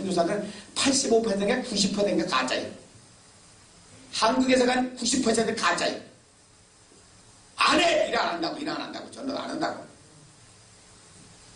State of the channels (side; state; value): both; identical; correlation 1.00